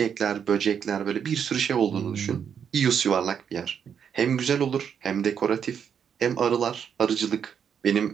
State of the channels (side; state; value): left; quieter; 7.7 dB